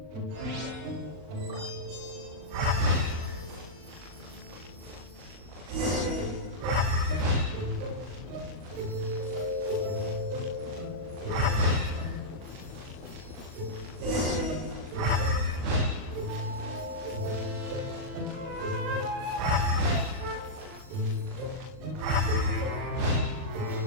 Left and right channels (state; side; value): late; left; 39 ms